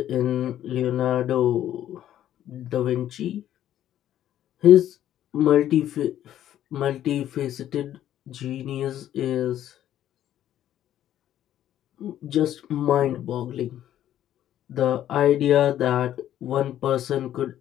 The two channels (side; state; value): right; quieter; 11.7 dB